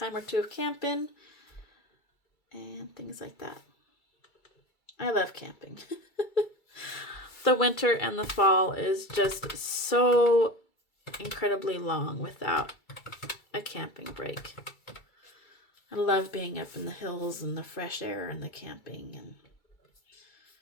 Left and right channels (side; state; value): right; late; 2.3 ms